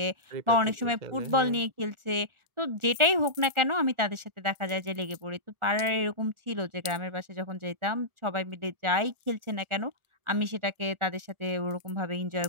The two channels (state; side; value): late; left; 1.4 ms